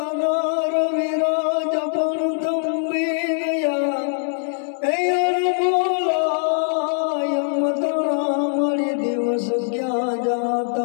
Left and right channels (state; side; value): silent; right; 60 dB below the other